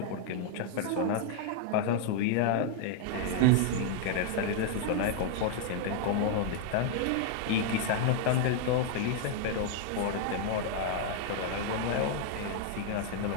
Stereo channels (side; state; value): both; different; correlation 0.00